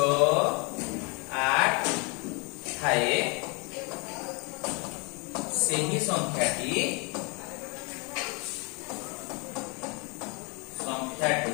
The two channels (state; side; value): quieter; right; 31.8 dB